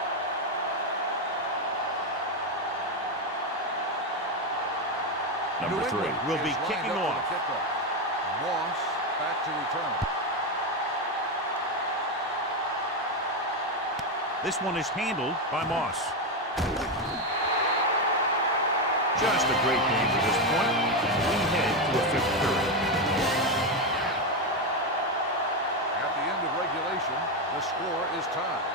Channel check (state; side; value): normal; both; correlation 0.09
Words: Number 3 will be kicking off. Moss back to return. This one is handled by Moss. Just a great game to this point. We head to a 5th period. At the end of regulation, the score is tied.